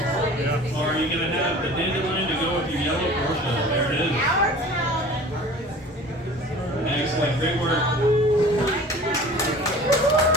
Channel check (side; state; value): both; normal; correlation 0.43